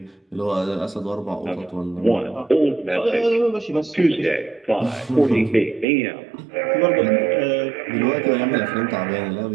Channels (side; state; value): left; drops out; at 5.9 s